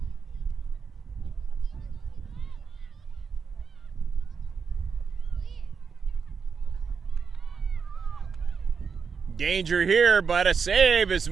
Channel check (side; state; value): left; quieter; 5.8 dB